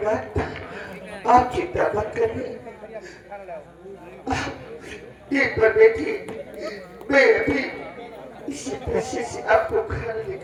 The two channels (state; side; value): identical; both; correlation 1.00